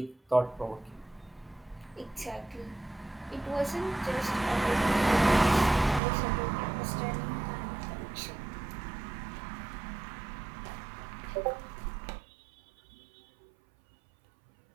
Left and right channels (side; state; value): left; drops out; at 6.0 s